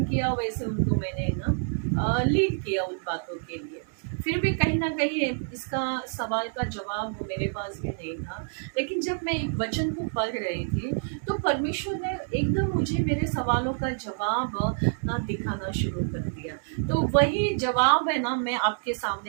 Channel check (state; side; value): silent; left; 60 dB below the other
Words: किया, वैसे उनको मैंने ना लीड किया उन बातों के लिए। फिर भी कहीं ना कहीं इसका सवाल का जवाब मेरे पास भी नहीं था। लेकिन जब मैं एक वचन को पढ़ रही थी तो परमेश्वर ने एकदम मुझे मेरे सवालों का जवाब ना दिखाना शुरू कर दिया। तो वही जवाब है ना मैं आपके